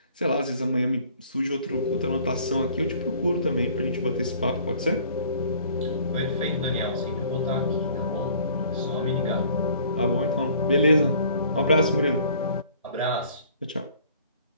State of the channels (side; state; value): both; inverted; correlation -0.54